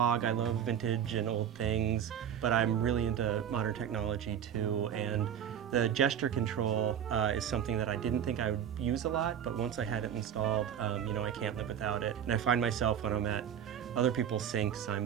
I love vintage and old things, but I'm really into modern technology too. And the gesture control is something that I didn't think I would use a lot, but once I had it installed, I can't live without it. And I find myself when I'm at other people's sinks,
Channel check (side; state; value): left; quieter; 9.2 dB